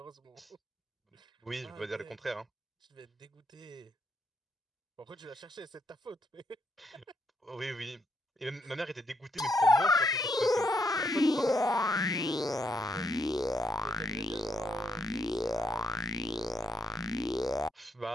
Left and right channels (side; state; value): both; normal; correlation 0.77